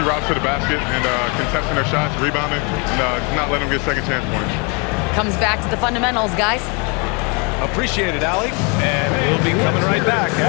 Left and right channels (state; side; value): quieter; right; 32.7 dB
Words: routes to the basket and contesting their shots, rebounding, and not letting them get second chance points. Comes back to the fundamentals, guys. Appreciate it, Allie. And we'll be coming right back